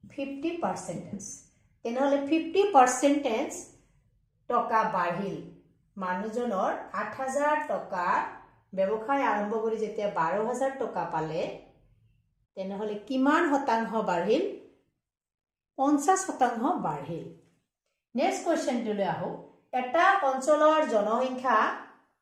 50%। তেনেহলে 50% টকা বাঢ়িল, মানুহজনৰ 8000 টকা ব্যৱসায় আৰম্ভ কৰি যেতিয়া 12000 টকা পালে, তেনেহলে কিমান শতাংশ বাঢ়িল 50% বাঢ়িল নেক্সট কোৱেশ্চনটোলৈ আহো এটা অঞ্চলৰ জনসংখ্যা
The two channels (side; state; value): both; identical; correlation 1.00